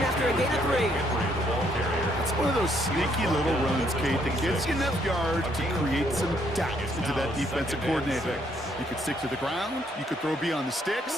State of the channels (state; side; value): normal; both; correlation 0.70